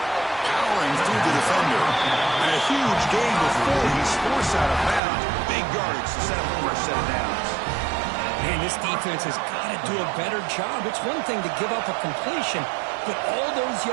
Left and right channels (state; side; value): drops out; left; at 5.0 s